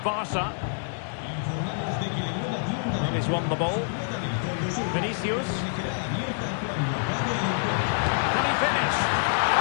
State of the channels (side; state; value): right; silent; digital silence